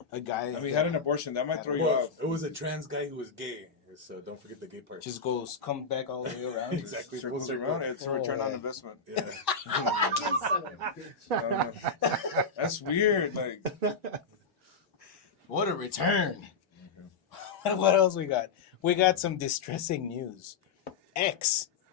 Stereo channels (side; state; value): right; quieter; 4.9 dB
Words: A guy. I mean, he had an abortion. That might throw you off. It was a trans guy who was gay. So don't forget the gay part. Just come back all the way around. Exactly. Circles around. It's a return on investment. Yeah. That's weird. Like, what a return. What else we got? We got some distressing news. X.